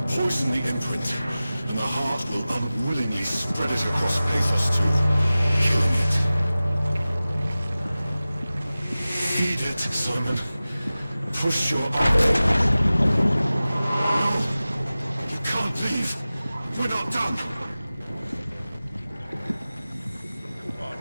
poison the imprint, and the heart will unwillingly spread it across Pathos 2, killing it. Feed it, Simon. Push your arm. No! You can't leave! We're not done!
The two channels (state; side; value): inverted; both; correlation -0.96